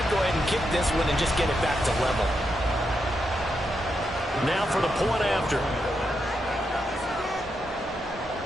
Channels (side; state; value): both; normal; correlation 0.83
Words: go ahead and kick this one and just get it back to level. Now for the point after.